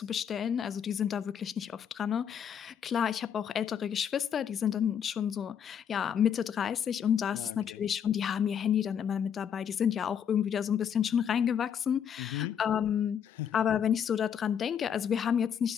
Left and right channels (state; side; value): quieter; right; 8.3 dB